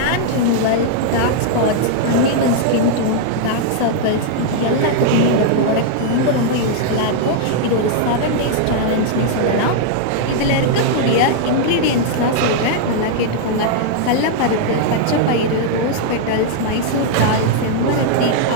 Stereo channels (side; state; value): both; different; correlation -0.01